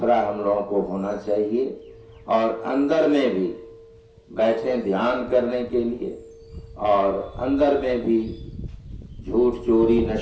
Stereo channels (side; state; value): both; identical; correlation 1.00